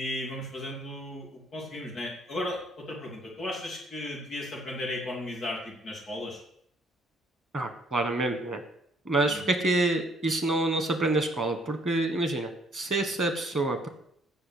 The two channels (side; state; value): both; normal; correlation 0.63